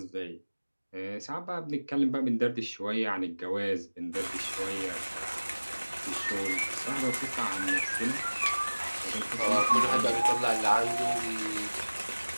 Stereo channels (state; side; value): inverted; both; correlation -1.00